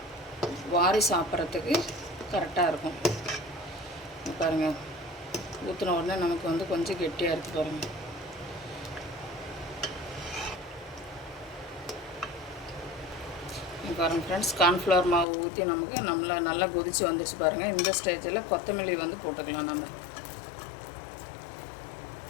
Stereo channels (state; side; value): drops out; right; at 15.2 s